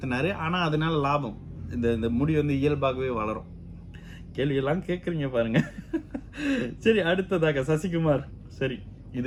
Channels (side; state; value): both; identical; correlation 1.00